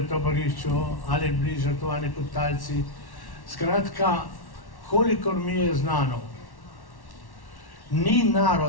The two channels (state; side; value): late; right; 1.1 ms